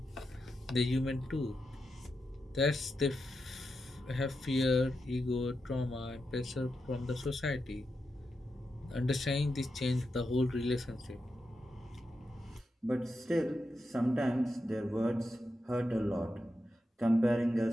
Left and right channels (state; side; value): normal; both; correlation 0.87